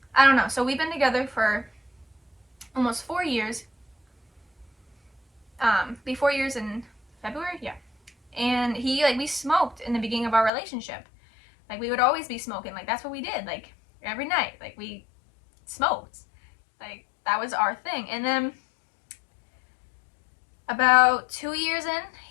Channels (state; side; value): drops out; right; at 10.5 s